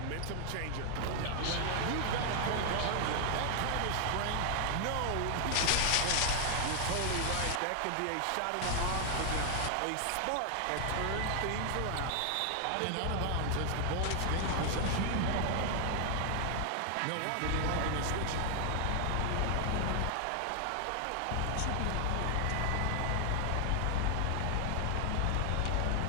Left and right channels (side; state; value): both; different; correlation 0.00